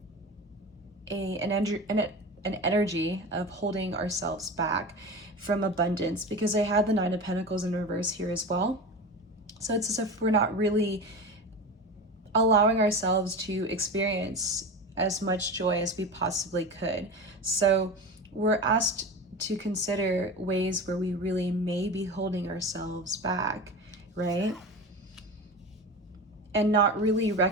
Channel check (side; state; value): both; normal; correlation 0.28